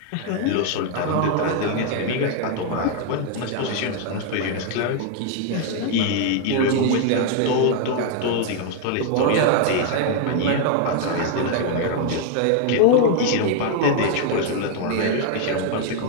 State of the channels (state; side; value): different; both; correlation 0.00